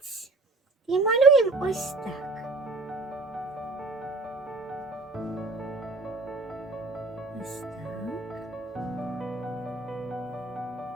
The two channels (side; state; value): left; quieter; 3.2 dB